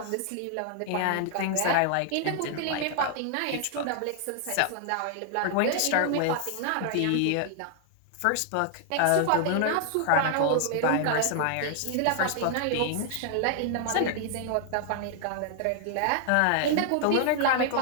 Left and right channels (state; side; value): different; both; correlation 0.00